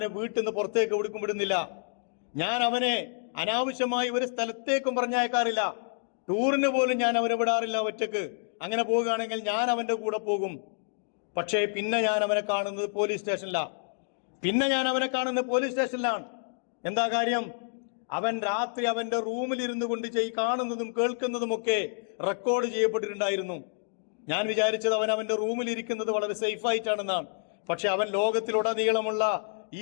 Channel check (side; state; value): right; silent; digital silence